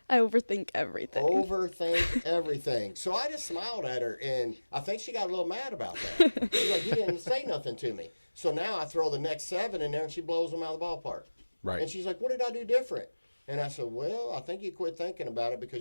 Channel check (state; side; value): inverted; both; correlation -1.00